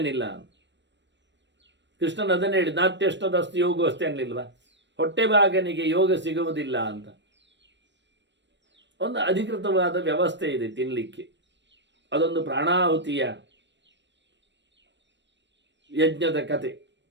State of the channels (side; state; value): left; late; 0.53 ms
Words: ಇಲ್ಲ. ಕೃಷ್ಣನ್ ಅದನ್ನೇ ಹೇಳಿ, ನಾತ್ಯಷ್ಟದಸ್ತು ಯೋಗ ಅಷ್ಟೇ ಅನ್ನಲಿಲ್ವಾ, ಹೊಟ್ಟೆ ಭಾಗನಿಗೆ ಯೋಗ ಸಿಗುವುದಿಲ್ಲ ಅಂತ. ಒಂದು ಅಧಿಕೃತವಾದ ವ್ಯವಸ್ಥೆ ಇದೆ ತಿನ್ನಲಿಕ್ಕೆ. ಅದೊಂದು ಪ್ರಾಣಾಹುತಿಯ ಯಜ್ಞದ ಕತೆ